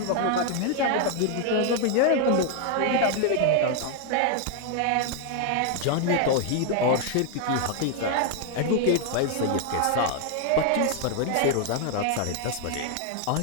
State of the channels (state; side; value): different; both; correlation 0.00